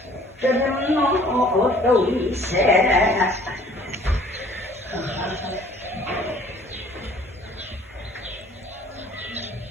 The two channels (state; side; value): normal; both; correlation 0.55